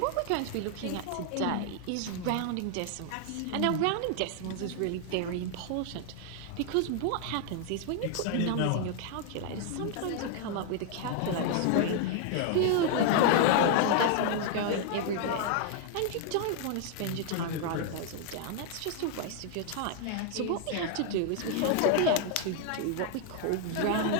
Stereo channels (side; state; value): both; different; correlation 0.00